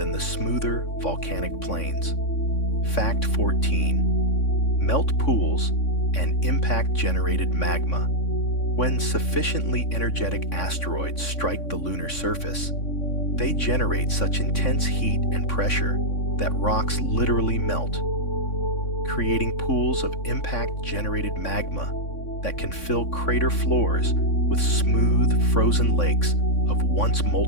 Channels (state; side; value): late; right; 3.6 ms